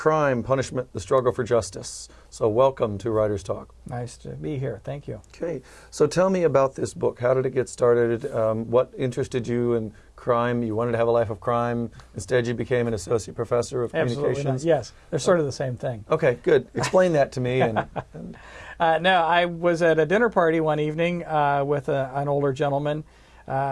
punishment, the struggle for justice. So welcome to Writer's Talk. Nice to be here. Thank you. Okay. So tell me about this book. How did it get started? What interested you in crime? You wanted to have a life of crime. Instead, you became an associate professor of communications. Not. Yes. They're sort of the same thing. Okay, good. Explain that to me. No, I was at a dinner party one evening with an older gentleman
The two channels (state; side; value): identical; both; correlation 1.00